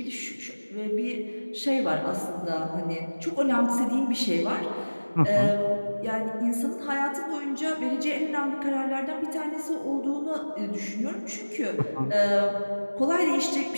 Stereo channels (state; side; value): inverted; both; correlation -1.00